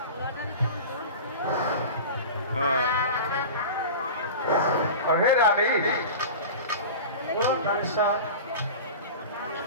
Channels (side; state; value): both; inverted; correlation -0.33